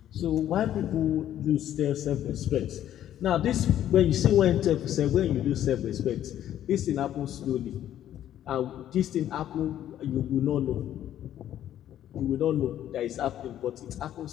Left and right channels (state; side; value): quieter; right; 11.5 dB